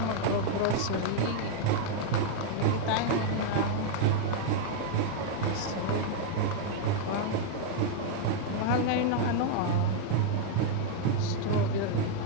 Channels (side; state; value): both; different; correlation 0.00